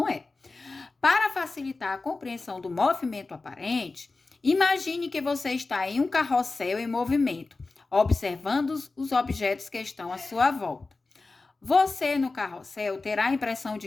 é. Para facilitar a compreensão do movimento aparente, imagine que você está em um carrossel em movimento, observando os objetos que estão à sua volta. Você, no carrossel, terá a impressão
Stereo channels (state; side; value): quieter; right; 3.7 dB